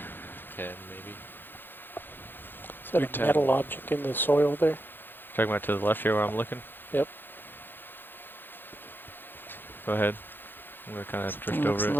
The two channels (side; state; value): right; late; 0.098 ms